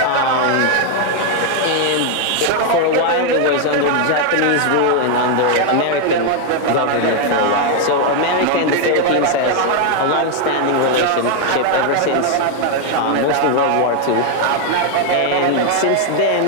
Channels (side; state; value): both; different; correlation 0.00